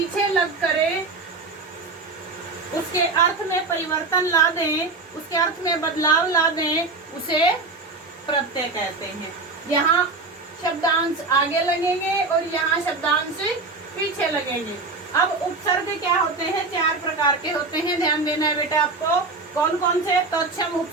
लग करे उसके अर्थ में परिवर्तन ला दें, उसके अर्थ में बदलाव ला दें, उसे प्रत्यय कहते हैं। यहाँ शब्दांश आगे लगेंगे और यहाँ शब्दांश पीछे लगेंगे। अब उपसर्ग क्या होते हैं, 4 प्रकार के होते हैं, ध्यान देना है बेटा आपको। कौन कौन से, तत्सम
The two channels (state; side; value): quieter; left; 3.7 dB